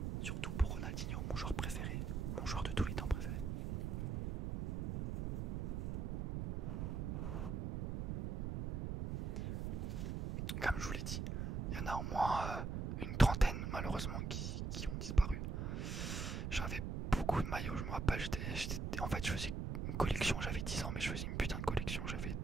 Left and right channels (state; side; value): noise; right; rumble, 2 dB below the sound